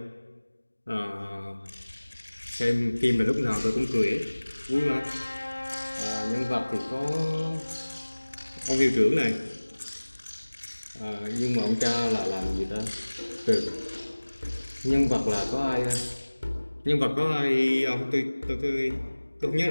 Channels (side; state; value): both; inverted; correlation -1.00